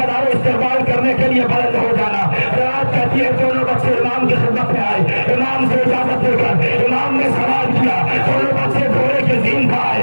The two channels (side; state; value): both; inverted; correlation -1.00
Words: इस्तेमाल करने के लिए बुलंद हो जाना। रवायत कहती है दोनों बच्चे इमाम की खिदमत में आए, इमाम से इजाजत लेकर इमाम ने सवाल किया। दोनों बच्चे घोड़े के ज़ीन पर आए,